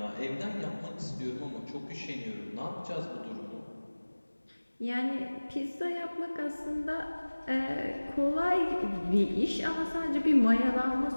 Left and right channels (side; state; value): both; inverted; correlation -1.00